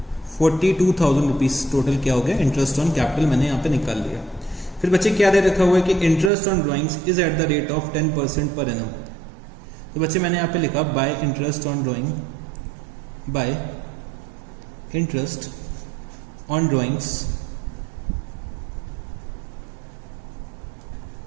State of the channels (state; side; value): drops out; left; at 6.3 s